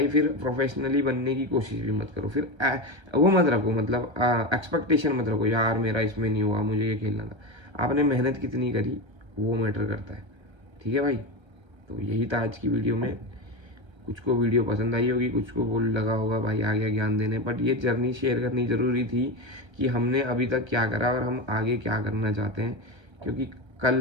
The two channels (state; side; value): late; left; 1.3 ms